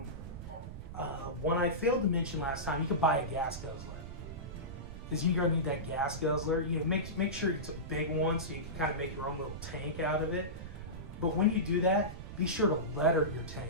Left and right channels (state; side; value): noise; right; rumble, 10 dB below the sound